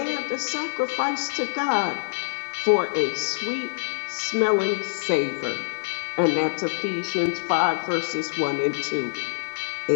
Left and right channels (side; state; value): right; silent; digital silence